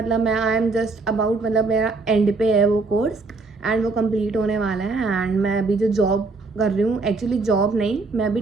मैं आई एम जस्ट अबाउट, मतलब मेरा एंड पे है वो कोर्स, एंड वो कंप्लीट होने वाला है। एंड मैं अभी जो जॉब कर रही हूँ, एक्चुअली जॉब नहीं, मैं अभी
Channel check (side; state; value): left; quieter; 3.7 dB